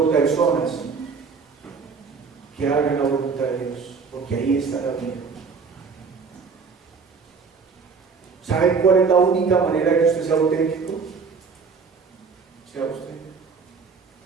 personas que hagan la voluntad de Dios, porque ahí está la vida. ¿Saben cuál es la única manera que usted sea auténtico? Sea usted.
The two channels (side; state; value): left; quieter; 5.2 dB